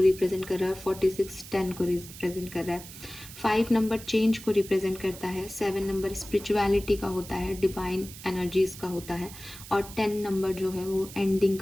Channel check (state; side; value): noise; right; hiss, 15 dB below the sound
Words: कर रहा है, 46 10 को रिप्रेजेंट कर रहा है. 5 नंबर चेंज को रिप्रेजेंट करता है, 7 नंबर स्पिरिचुअलिटी का होता है, डिवाइन एनर्जीज का होता है, और 10 नंबर जो है वो एंडिंग